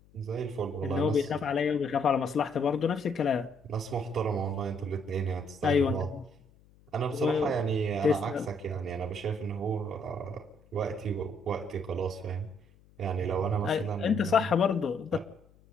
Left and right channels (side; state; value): left; noise; hum, 28 dB below the sound